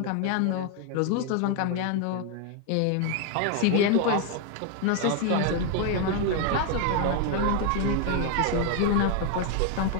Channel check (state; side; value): different; both; correlation 0.01